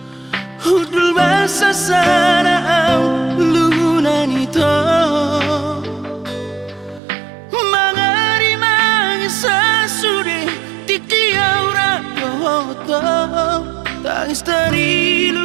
hudul basa sana au lunan ito to tangis dari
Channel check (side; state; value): left; drops out; at 7.0 s